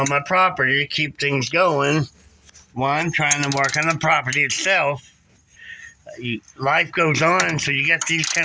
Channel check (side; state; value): both; identical; correlation 1.00